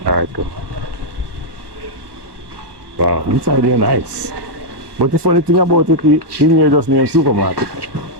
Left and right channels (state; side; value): late; left; 1.2 ms